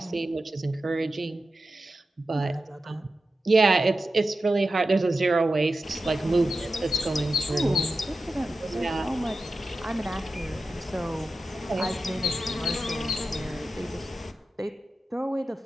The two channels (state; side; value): normal; both; correlation 0.92